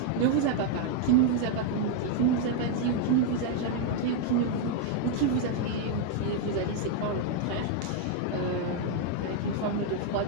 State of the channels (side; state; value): both; different; correlation 0.00